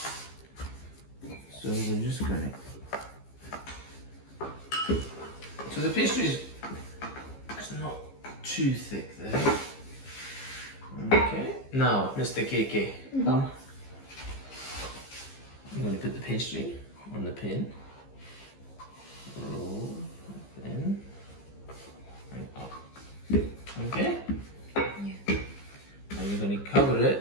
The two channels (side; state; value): right; late; 15 ms